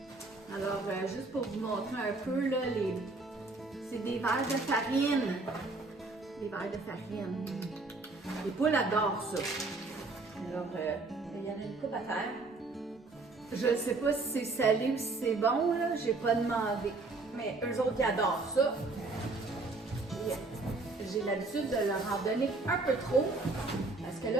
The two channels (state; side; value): quieter; left; 3.5 dB